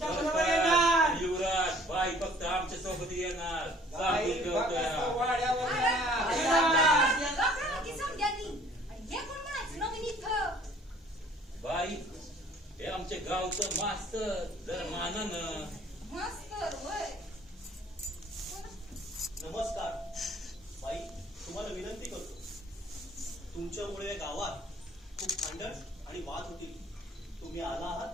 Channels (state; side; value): normal; both; correlation 0.55